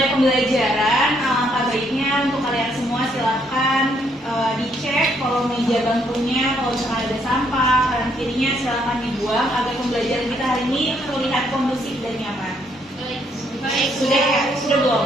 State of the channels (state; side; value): normal; both; correlation 0.71